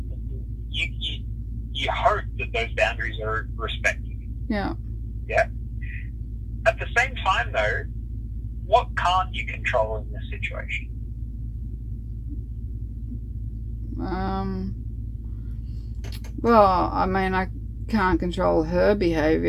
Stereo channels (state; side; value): identical; both; correlation 1.00